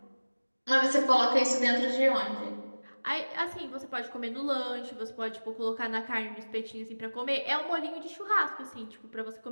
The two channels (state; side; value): inverted; both; correlation -1.00